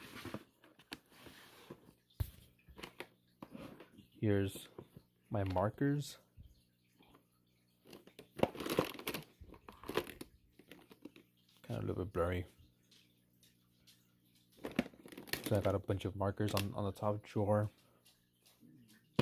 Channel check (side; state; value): both; identical; correlation 1.00